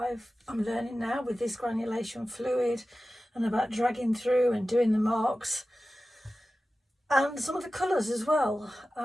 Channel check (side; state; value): both; normal; correlation 0.95